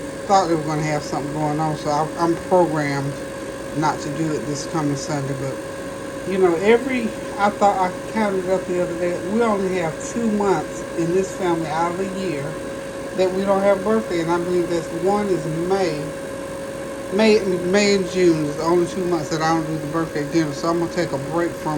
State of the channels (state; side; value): identical; both; correlation 1.00